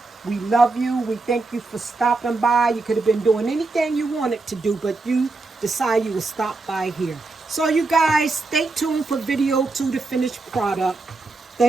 We love you. We thank you for stopping by. You could have been doing anything you wanted to do, but you decided you would stop by here. So you guys stay tuned for video 2, the finished product.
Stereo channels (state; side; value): quieter; left; 3.5 dB